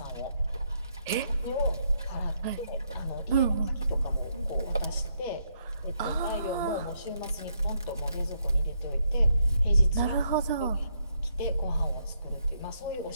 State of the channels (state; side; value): inverted; both; correlation -0.75